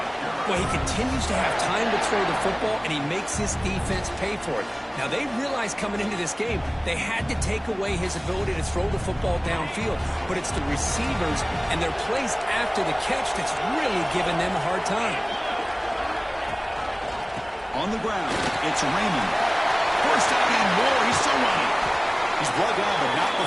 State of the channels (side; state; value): both; identical; correlation 1.00